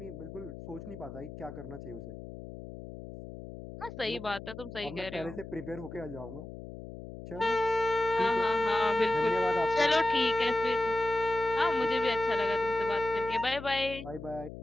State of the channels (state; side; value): noise; left; hum, 12 dB below the sound